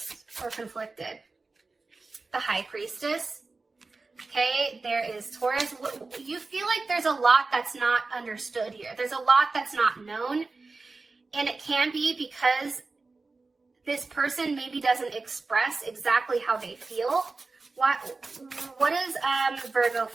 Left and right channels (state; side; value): quieter; left; 3.8 dB